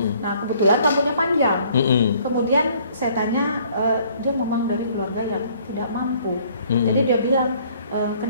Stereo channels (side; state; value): both; inverted; correlation -0.59